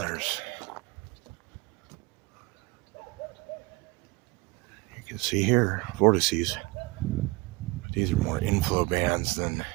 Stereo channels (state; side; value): quieter; left; 23.7 dB